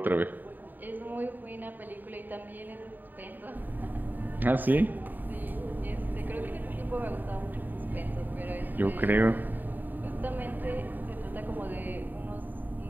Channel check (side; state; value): left; late; 0.089 ms